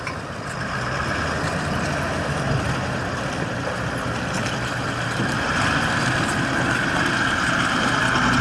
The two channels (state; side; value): identical; both; correlation 1.00